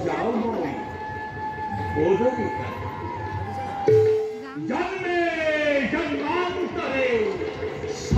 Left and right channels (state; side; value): identical; both; correlation 1.00